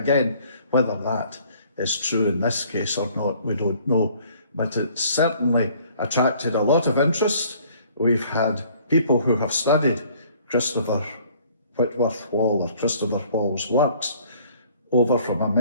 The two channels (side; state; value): both; inverted; correlation -0.57